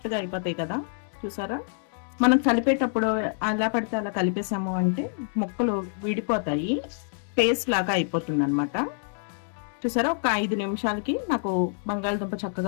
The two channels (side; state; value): right; silent; digital silence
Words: అయిపోతాయి కదా. చూసారా, మనం కలిపేటప్పుడు అలా పడితే అలా కలిపేసాము అంటే ముక్కలు విడిపోతాయి, పేస్ట్ లాగా అయిపోతుంది అనమాట. చూసారా, ఒక 5 నిమిషాలకి నాకు బంగాళదుంప